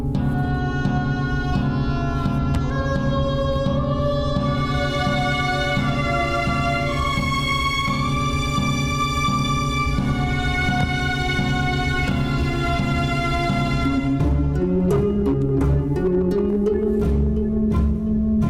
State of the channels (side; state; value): both; identical; correlation 1.00